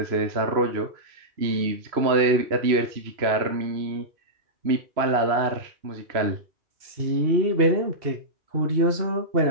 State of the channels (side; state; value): left; late; 3.0 ms